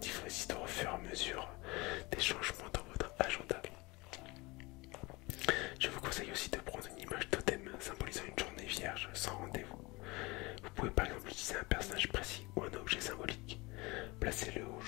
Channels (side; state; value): right; quieter; 24.0 dB